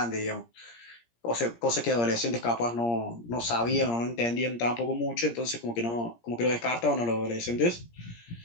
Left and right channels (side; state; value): right; late; 17 ms